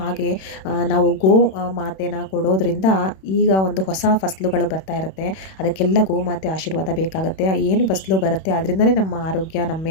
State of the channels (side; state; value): right; late; 31 ms